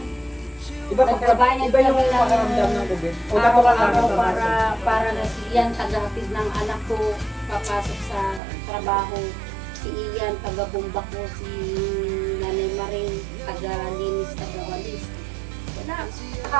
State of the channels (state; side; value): drops out; left; at 8.4 s